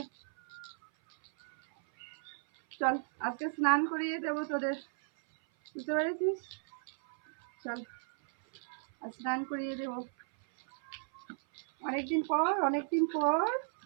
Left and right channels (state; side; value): silent; left; 55 dB below the other